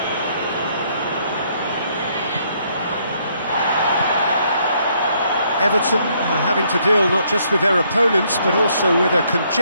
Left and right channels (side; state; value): both; inverted; correlation -0.69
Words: Everton are having to deal not just with their opponents, but also with a